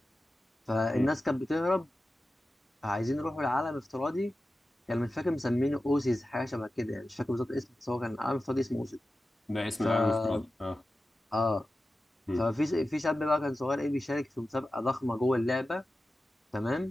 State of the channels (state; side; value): normal; both; correlation 0.94